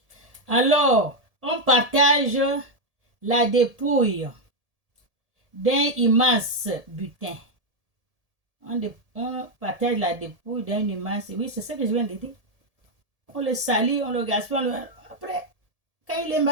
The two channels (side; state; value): left; late; 1.7 ms